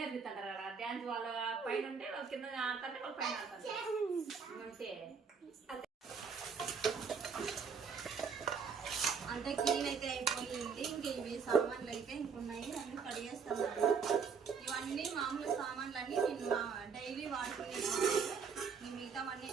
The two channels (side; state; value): left; quieter; 5.9 dB